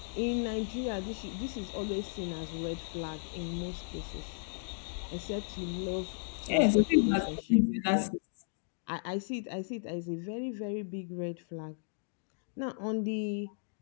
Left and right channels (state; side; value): silent; right; digital silence